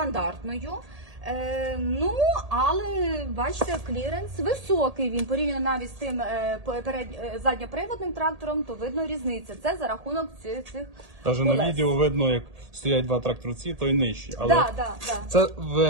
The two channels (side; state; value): left; late; 1.8 ms